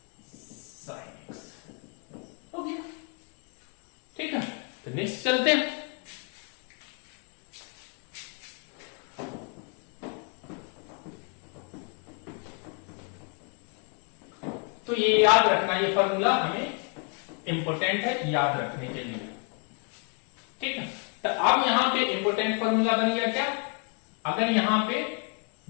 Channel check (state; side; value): quieter; right; 38.1 dB